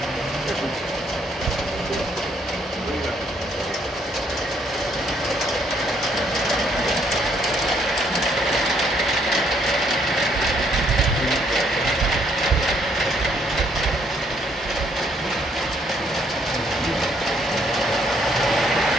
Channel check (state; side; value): normal; both; correlation 0.69